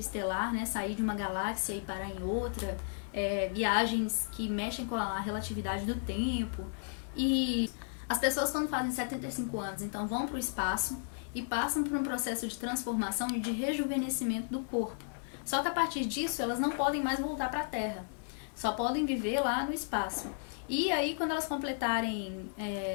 né? Sair de uma galáxia e parar em outra, viagens que mexem com a relatividade do tempo. E as pessoas, quando fazem 75 anos, então vão para o espaço e passam por um processo de transformação e de rejuvenescimento do corpo. Só que a partir disso, elas não podem mais voltar para a Terra. Só podem viver lá no espaço. E aí, quando elas completarem,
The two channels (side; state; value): right; silent; digital silence